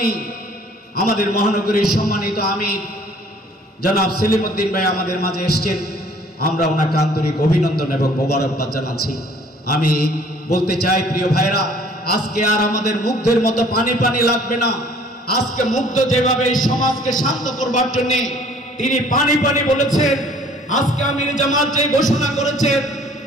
আমাদের মহানগরীর সম্মানিত আমির জনাব সেলিম উদ্দিন ভাই আমাদের মাঝে এসছেন, আমরা ওনাকে আন্তরিক অভিনন্দন এবং মোবারকবাদ জানাচ্ছি। আমি বলতে চাই প্রিয় ভাইরা, আজকে আর আমাদের মুগ্ধের মতো পানি পানি লাগবে না। আজকে মুগ্ধ যেভাবে এই সমাজকে শান্ত করবার জন্য তিনি পানি পানি বলেছেন, আজকে আমির জামাত যে ঘোষণা করেছেন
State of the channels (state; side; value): normal; both; correlation 0.54